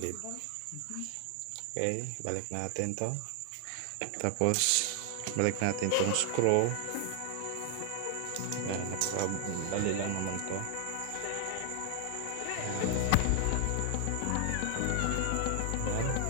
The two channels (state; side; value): different; both; correlation 0.00